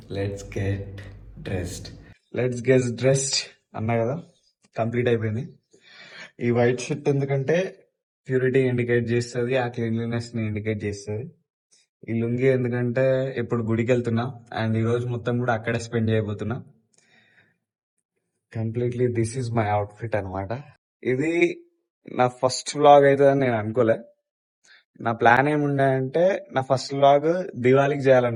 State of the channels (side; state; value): both; identical; correlation 1.00